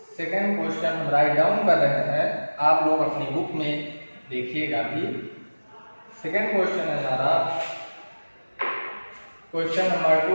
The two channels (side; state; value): both; inverted; correlation -1.00